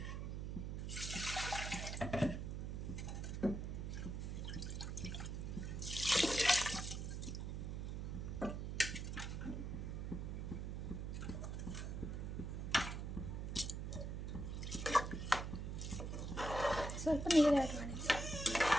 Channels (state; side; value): noise; right; hum, 4 dB below the sound